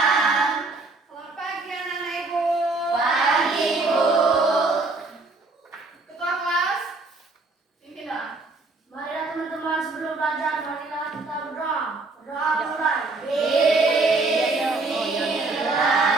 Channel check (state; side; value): quieter; left; 3.5 dB